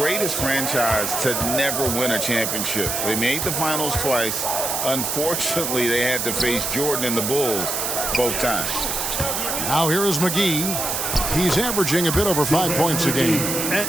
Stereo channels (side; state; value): right; noise; hiss, 1 dB below the sound